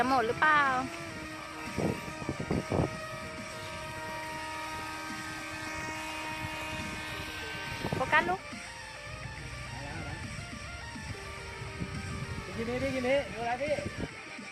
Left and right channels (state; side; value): identical; both; correlation 1.00